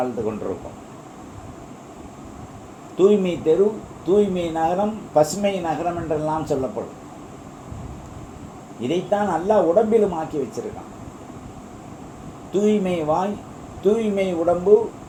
கொண்டிருக்கோம். தூய்மை தெரு, தூய்மை நகரம், பசுமை நகரம் என்றெல்லாம் சொல்லப்படும். இதைத்தான் அல்லாஹ் உடம்பிலும் ஆக்கி வச்சிருக்கான். தூய்மை வாய், தூய்மை உடம்பு,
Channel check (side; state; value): both; identical; correlation 1.00